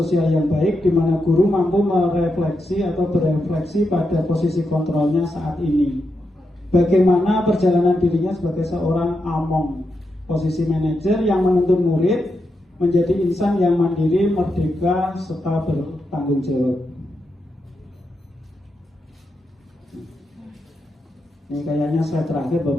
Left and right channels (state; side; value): normal; both; correlation 0.85